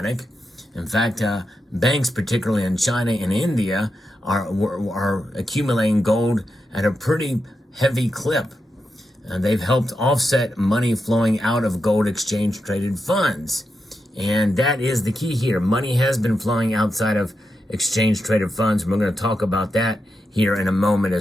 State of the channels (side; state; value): both; normal; correlation 0.87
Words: In fact, banks, particularly in China and India, are accumulating gold at a pretty heavy clip. They've helped offset money flowing out of gold exchange traded funds. And that is the key here. Money has been flowing outside of exchange traded funds. We're going to talk about that here in a moment